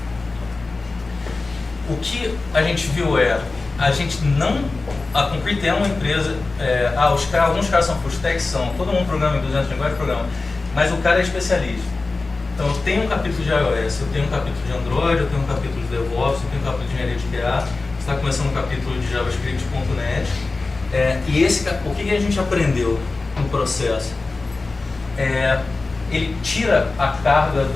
o que a gente viu a gente não... A Concrete é uma empresa... alguns caras são full stack, todo mundo programa em 200 linguagens, programa, mas o cara é especialista. Então eu tenho um capítulo de iOS, eu tenho um capítulo de Android, eu tenho um capítulo de DevOps, eu tenho um capítulo de engenharia de QA, está começando um capítulo de JavaScript.net. O que a gente aprendeu no processo? Ele tira a carga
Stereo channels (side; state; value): right; quieter; 3.6 dB